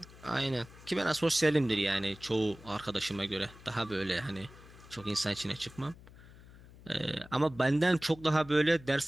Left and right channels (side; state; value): left; noise; hum, 20 dB below the sound